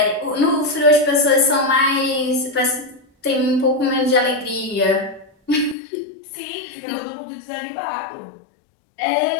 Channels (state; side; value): drops out; right; at 5.8 s